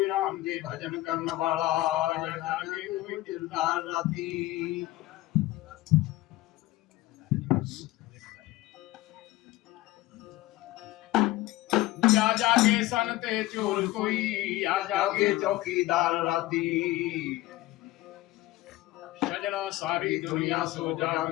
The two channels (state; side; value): quieter; right; 17.5 dB